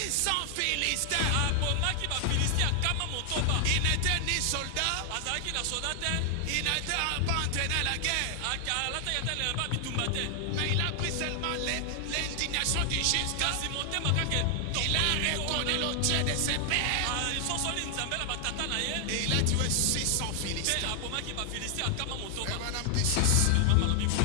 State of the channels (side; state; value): both; different; correlation 0.00